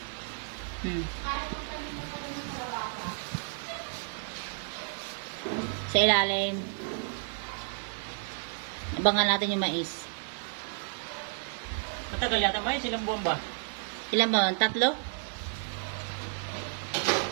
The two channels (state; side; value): silent; left; digital silence